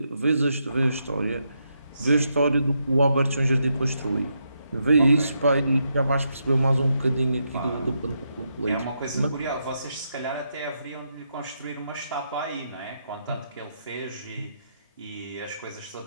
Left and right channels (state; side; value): inverted; both; correlation -0.81